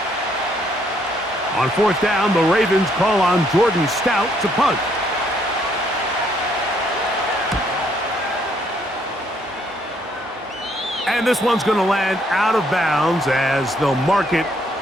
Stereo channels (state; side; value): normal; both; correlation 0.69